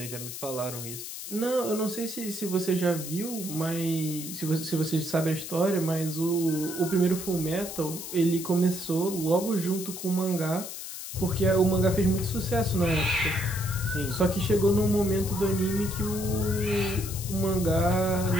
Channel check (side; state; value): left; noise; hiss, 9 dB below the sound